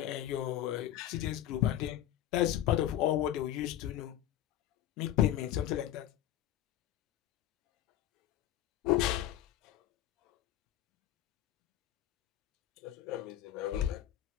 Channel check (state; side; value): quieter; right; 12.3 dB